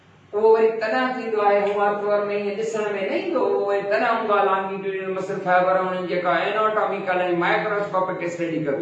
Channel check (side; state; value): both; identical; correlation 1.00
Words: उहो वरी तना थींदो आहे, हुआ तौर में ईअं ॾिसण में न ईंदो, उहो वरी तना हूंदो आहे longitudinal muscle fiber। उन्हनि जेका एनाटॉमिकल ऐं माइक्रोस्कोपिक स्टडी